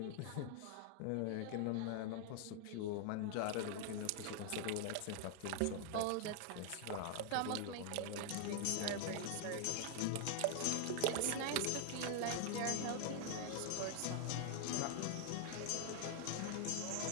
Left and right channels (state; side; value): different; both; correlation 0.00